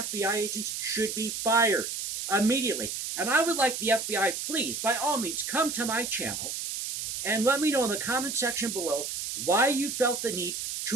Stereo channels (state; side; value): noise; right; hiss, 4 dB below the sound